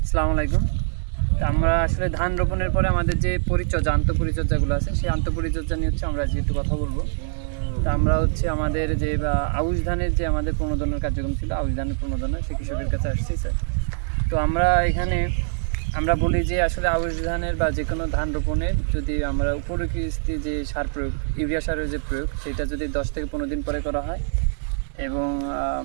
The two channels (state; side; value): silent; left; digital silence